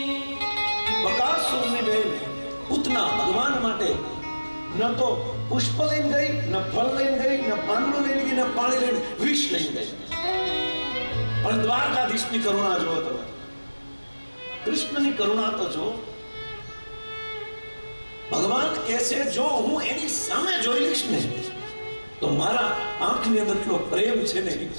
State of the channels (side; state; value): both; inverted; correlation -1.00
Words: બકાસુરની બેન પૂતના ભગવાન માટે ન તો પુષ્પ લઈને ગઈ, ન ફળ લઈને ગઈ, ન પાંદડું લઈને ગઈ, ન પાણી લઈને, વિષ લઈને ગઈ. પણ દ્વારકાધીશની કરુણા જુઓ તમે, કૃષ્ણની કરુણા તો જો. ભગવાન કહે છે જો હું એની સામે જોઈ લઈશ ને તો મારા આંખની અંદર એટલો પ્રેમ છે ને એ